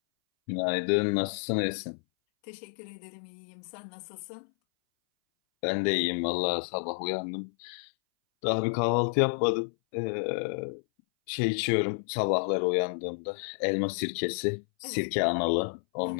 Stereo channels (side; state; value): right; silent; 58 dB below the other